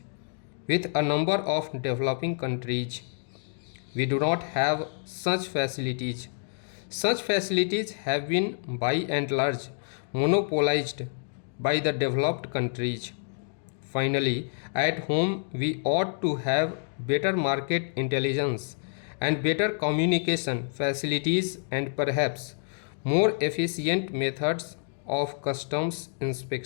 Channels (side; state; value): right; silent; digital silence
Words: with a number of developing countries. We do not have such facilities. Such facilities have been by and large monopolized by the developed countries. Finally, at home we ought to have better market intelligence and better communication facilities and perhaps more efficient methods of customs